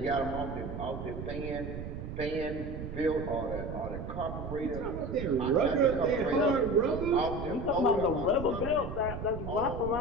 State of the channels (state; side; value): noise; right; rumble, 7 dB below the sound